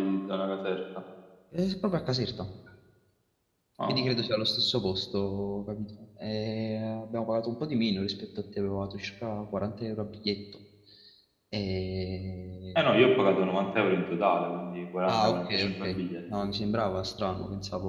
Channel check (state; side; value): identical; both; correlation 1.00